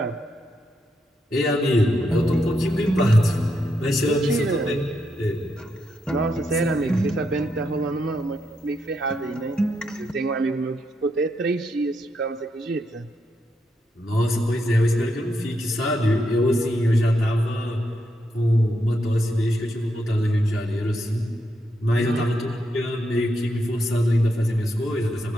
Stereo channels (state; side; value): normal; both; correlation 0.81